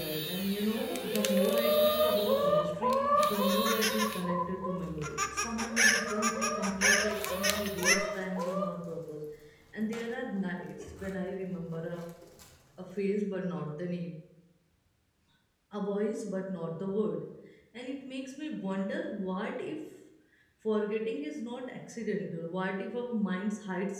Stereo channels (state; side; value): identical; both; correlation 1.00